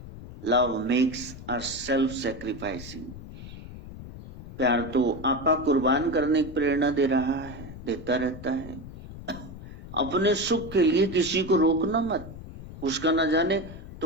Love makes us self sacrificing. प्यार तो आपा कुर्बान करने की प्रेरणा दे रहा है, देता रहता है। अपने सुख के लिए किसी को रोकना मत, उसका न जाने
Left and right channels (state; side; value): noise; left; rumble, 13 dB below the sound